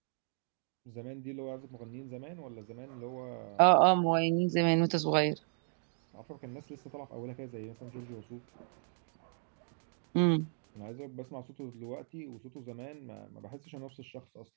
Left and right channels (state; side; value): silent; left; 54 dB below the other